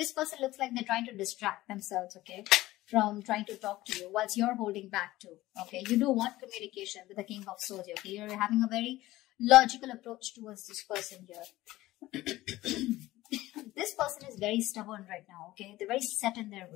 person looks like they're trying to distract themselves. Okay, from trying to talk to you, whilst you're holding back too. Okay, you do want communication with the King of Swords. Okay, you're having a very logical approach towards this person here. This person is very stubborn right now. Okay, they're very set in their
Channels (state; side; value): quieter; right; 17.0 dB